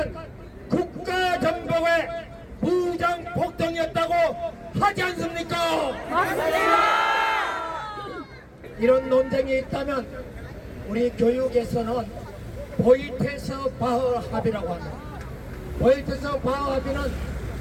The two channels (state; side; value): identical; both; correlation 1.00